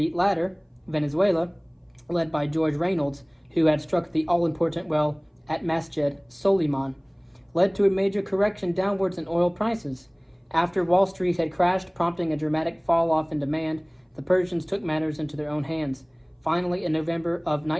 latter, Venezuela, led by George Reynolds, who had struck the all-important well at Masjid Soliman, led to a major correction downwards in oil prices. After Wall Street had crashed, prompting a dramatic fall-off in demand, the Persians took matters into their own hands. Finally, in November of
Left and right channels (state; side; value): identical; both; correlation 1.00